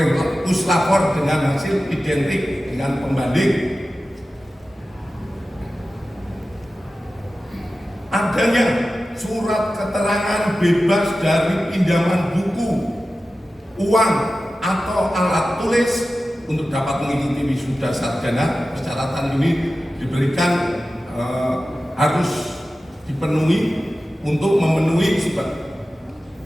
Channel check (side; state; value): both; normal; correlation 0.94